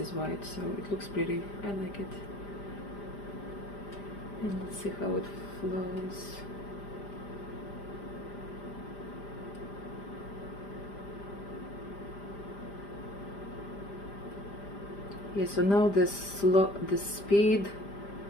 white, so it looks pretty. I like it. And let's see how it flows. Yeah, so now the speed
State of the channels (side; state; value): right; late; 5.0 ms